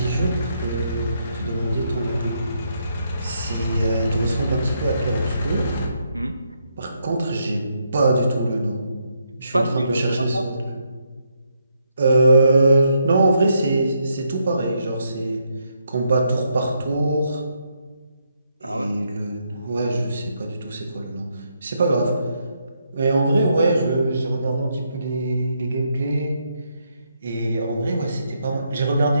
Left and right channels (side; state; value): both; inverted; correlation -0.78